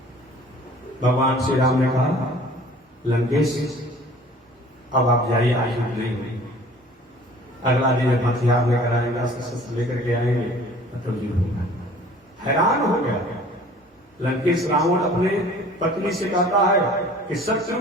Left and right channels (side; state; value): both; normal; correlation 0.49